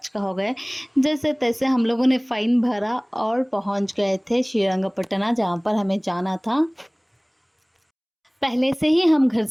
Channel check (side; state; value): both; identical; correlation 1.00